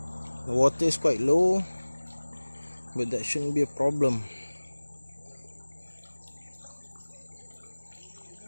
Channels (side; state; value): both; inverted; correlation -1.00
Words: The water is quite low, but that shouldn't be a problem.